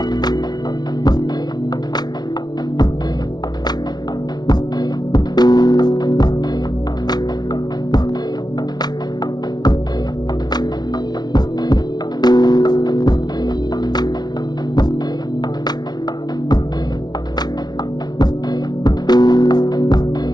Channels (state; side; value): late; right; 0.19 ms